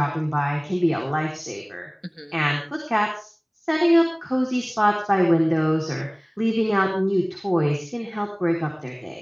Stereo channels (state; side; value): identical; both; correlation 1.00